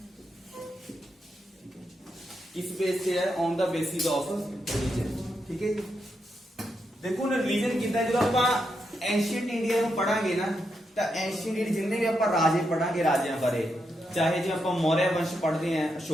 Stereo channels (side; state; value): both; normal; correlation 0.83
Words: किस बेस से है, on the basis of religion, ठीक है जी। देखो ना रिलीजन कितना, जो आप एंशिएंट इंडिया ਨੂੰ ਪੜਾਂਗੇ ਨਾ, ਤਾਂ एंशिएंट इंडिया जिन्ने भी ਆਪਾਂ ਰਾਜੇ ਪੜਾਂਗੇ, ਰਾਜਿਆਂ ਬਾਰੇ, ਚਾਹੇ ਜੇ ਆਪਾਂ ਮੌर्य ਵੰਸ਼ ਪੜਦੇ ਆਂ,